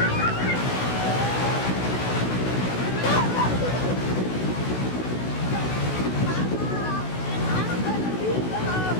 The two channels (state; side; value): late; right; 16 ms